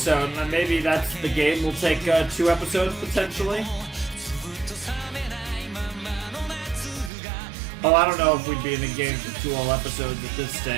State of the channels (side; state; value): left; drops out; at 7.1 s